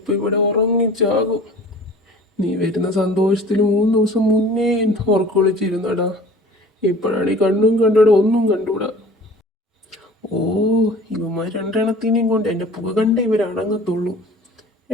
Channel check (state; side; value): normal; both; correlation 0.45